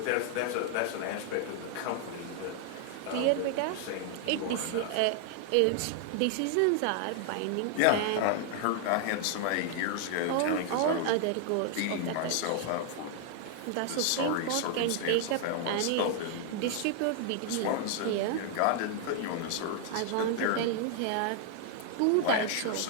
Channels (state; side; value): different; both; correlation 0.00